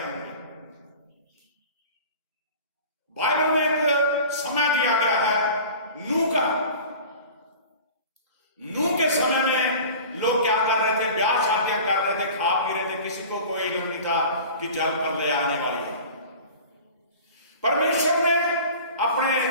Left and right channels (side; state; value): both; inverted; correlation -0.39